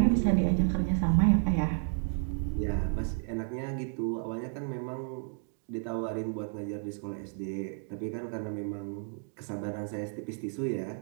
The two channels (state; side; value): silent; left; 57 dB below the other